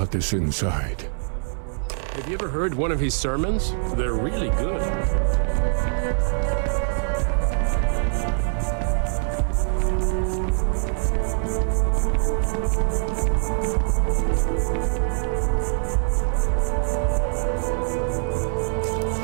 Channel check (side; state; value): left; silent; digital silence